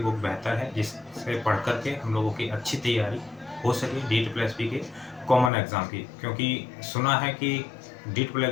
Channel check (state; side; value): drops out; right; at 5.5 s